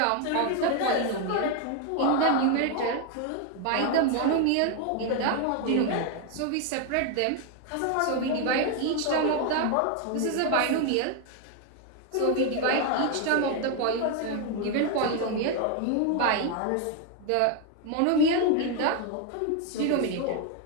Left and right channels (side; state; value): both; different; correlation 0.01